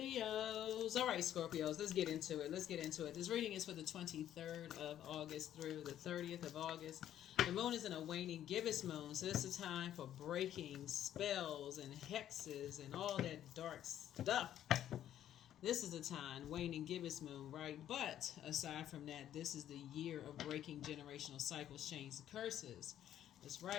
All right, Scorpios, let's get into it. This reading is for the 23rd of August through the 30th of August. The moon is in a waning gibbous moon, so this is a time for breaking spells and hexes and all that dark stuff. This is a time, waning gibbous moon, right? But aside from that, this is the year of breaking generational cycles, chains, and curses. That's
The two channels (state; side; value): quieter; right; 11.3 dB